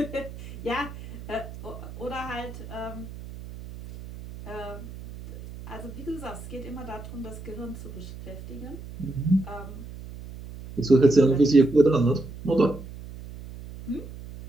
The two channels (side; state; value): right; noise; hum, 13 dB below the sound